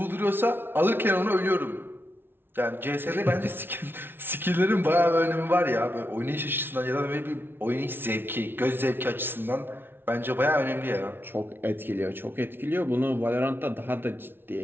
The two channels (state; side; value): late; left; 0.11 ms